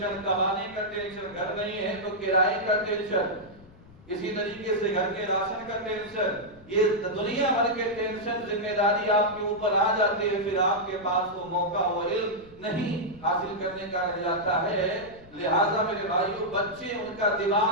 کمانے کا ٹینشن، گھر نہیں ہے تو کرائے کا ٹینشن، اسی طریقے سے گھر کے راشن کا ٹینشن، یہ دنیا بھر کے ٹینشن، ذمہ داری آپ کے اوپر آ جاتے ہیں، پھر آپ کے پاس وہ موقع، وہ علم نہیں حاصل کرنے کا رہ جاتا ہے۔ لہٰذا میرے بھائیوں، بچے ان کا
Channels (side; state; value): left; noise; rumble, 23 dB below the sound